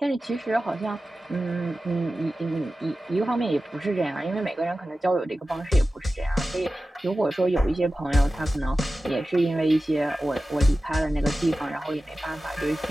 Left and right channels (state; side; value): normal; both; correlation 0.94